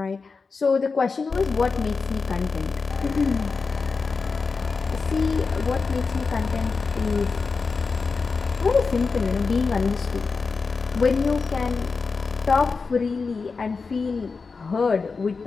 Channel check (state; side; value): quieter; right; 4.6 dB